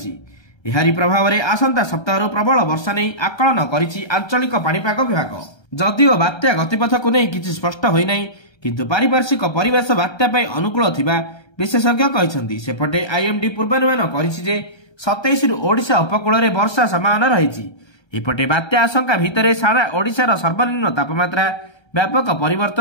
ଏହାରି ପ୍ରଭାବରେ ଆସନ୍ତା ସପ୍ତାହରୁ ପ୍ରବଳ ବର୍ଷା ନେଇ ଆକଳନ କରିଛି ଆଞ୍ଚଳିକ ପାଣିପାଗ ବିଭାଗ। ଯଦିଓ ବାତ୍ୟା ଗତିପଥକୁ ନେଇ କିଛି ସ୍ପଷ୍ଟ ହୋଇନାହିଁ, କିନ୍ତୁ ପାରିପାର୍ଶ୍ୱିକ ପରିବେଶ ବାତ୍ୟା ପାଇଁ ଅନୁକୂଳ ଥିବା ବିଶେଷଜ୍ଞ କହିଛନ୍ତି। ସେପଟେ ଆଇଏମ୍ଡି ପୂର୍ବାନୁମାନ କରିଛି ଯେ 27ରୁ ଓଡ଼ିଶା ଉପକୂଳରେ ବର୍ଷା ସମ୍ଭାବନା ରହିଛି। ଏପଟେ ବାତ୍ୟା ଆଶଙ୍କା ଭିତରେ ସାରା ଓଡ଼ିଶାର ସର୍ବନିମ୍ନ ତାପମାତ୍ରା ବ୍ୟାପକ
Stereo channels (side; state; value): right; late; 1.3 ms